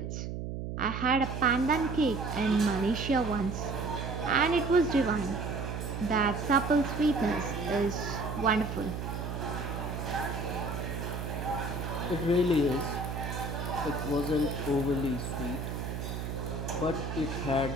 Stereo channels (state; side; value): noise; right; hum, 5 dB below the sound